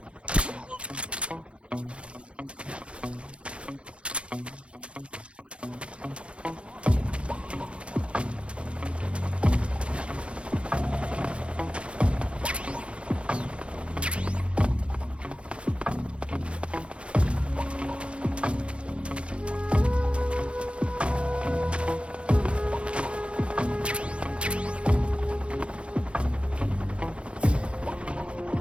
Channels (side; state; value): left; late; 0.060 ms